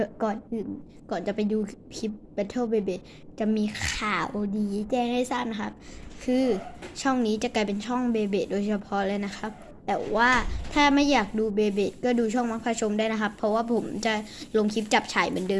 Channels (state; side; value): identical; both; correlation 1.00